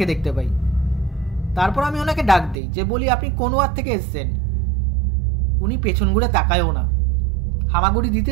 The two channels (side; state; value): left; drops out; at 2.6 s